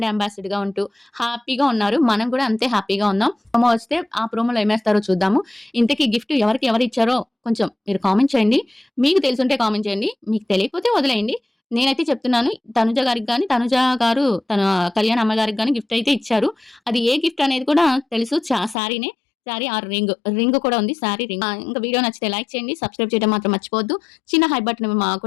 అంబాసిడర్‌గా ఉంటూ హ్యాపీగా ఉన్నారు. మనం కూడా అంతే హ్యాపీగా ఉన్నాం. ప్రోమో వస్తే ఆ ప్రోమోలో ఏమేస్తారో చూద్దాము. ఇంతకీ గిఫ్ట్ ఎవరిచ్చారో కొంచెం మీరు కామెంట్ చేయండి. మీకు తెలిసుంటే కామెంట్ చేయండి. మీకు తెలియకపోతే వదిలేయండి. నేనైతే చెప్తున్నాను తనుజ గారికి గాని, తనుజ గారు తన కళ్యాణ్ అమ్మగారికి గాని గిఫ్ట్ అయితే ఇచ్చారు. అది ఏ గిఫ్ట్ అనేది కూడా తెలుసు. శారీనే. శారీ ఆర్ రింగ్ కూడా ఉంది. శారీ రింగ్. ఇంకా వీడియో నచ్చితే లైక్ చేయండి. సబ్స్క్రైబ్ చేయడం మాత్రం మర్చిపోవద్దు. చిన్న హై బటన్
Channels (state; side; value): drops out; right; at 18.8 s